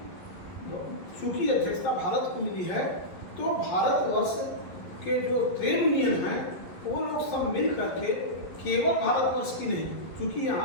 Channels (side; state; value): right; late; 11 ms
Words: चूँकि अध्यक्षता भारत को मिली है, तो भारतवर्ष के जो ट्रेड यूनियन हैं वो लोग सब मिल करके, केवल भारतवर्ष की नहीं, क्योंकि